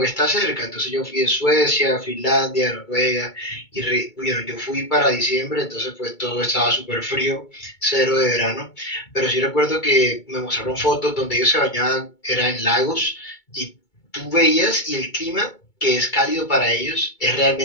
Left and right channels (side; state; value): right; late; 2.2 ms